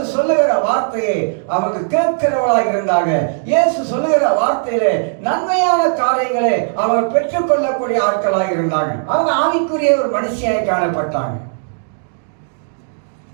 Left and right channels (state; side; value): silent; left; digital silence